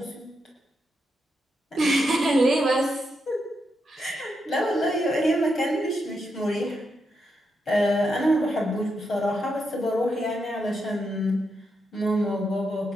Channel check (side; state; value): both; normal; correlation 0.83